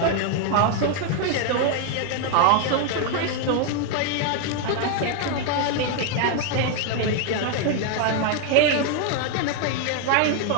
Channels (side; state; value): both; different; correlation 0.00